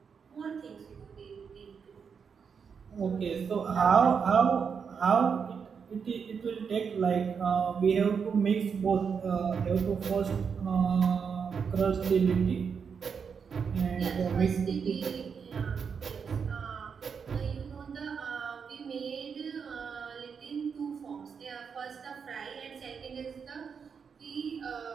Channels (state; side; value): quieter; left; 6.3 dB